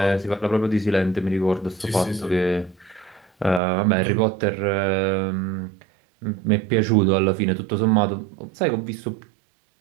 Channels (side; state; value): left; drops out; at 3.6 s